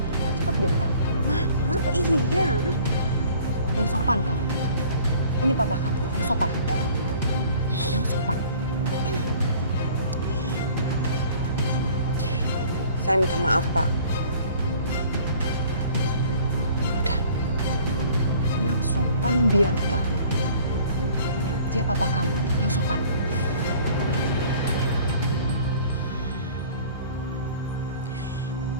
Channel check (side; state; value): both; inverted; correlation -0.51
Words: Cepat, Bianca. Iya. Yang sopan kamu. Ini papa kamu, yang sopan. Yang sopan. Saya minta maaf, Pak. Udah. Yang sopan, Bianca. Dia papa kamu, yang sopan.